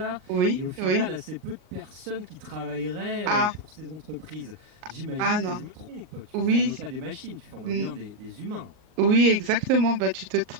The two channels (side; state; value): left; late; 38 ms